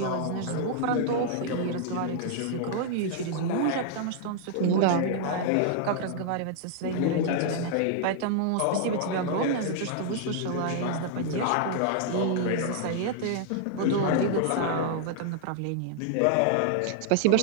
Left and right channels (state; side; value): different; both; correlation -0.01